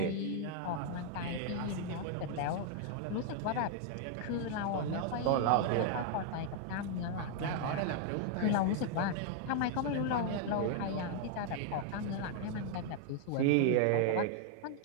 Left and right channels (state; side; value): different; both; correlation 0.00